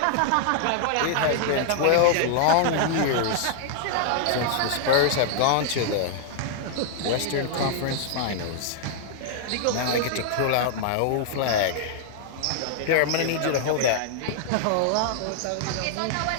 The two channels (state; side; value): different; both; correlation -0.01